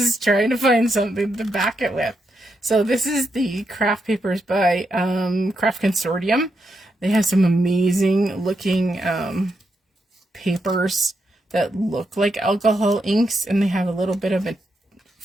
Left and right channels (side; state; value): both; normal; correlation 0.82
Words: trying to find something to back it with. So this is the craft papers by Craft Consortium. They have some amazing looking papers that look like alcohol inks, and they have a little bit of a